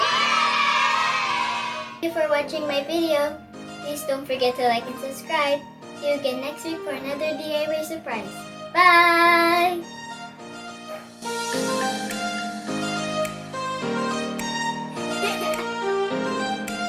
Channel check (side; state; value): both; identical; correlation 1.00